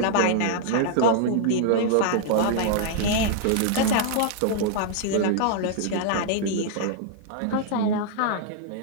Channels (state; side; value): different; both; correlation -0.01